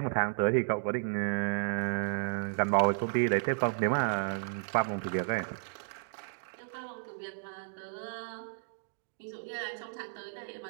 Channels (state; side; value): silent; left; digital silence